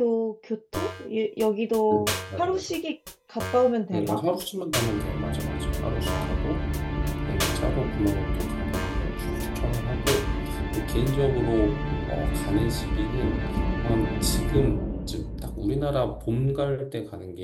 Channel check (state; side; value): identical; both; correlation 1.00